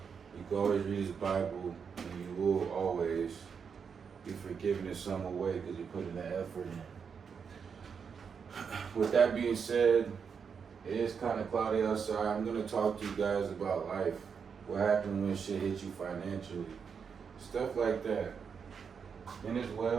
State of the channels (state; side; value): quieter; left; 6.4 dB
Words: you can always read this Bible and you will always be forgiven in some way because you put in the effort in. With that being said, it is kind of cloudy outside. I'm going to talk to you guys about life. What happened when shit hit you financially. Stuff like that. And as